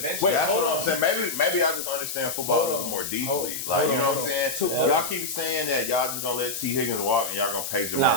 that's hold what on. I'm saying. Maybe I just understand football a little more deeply. Like, you know what I'm saying? Y'all keep saying that y'all just gonna let T. Higgins walk and y'all gonna pay Jamar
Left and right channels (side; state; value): left; noise; hiss, 5 dB below the sound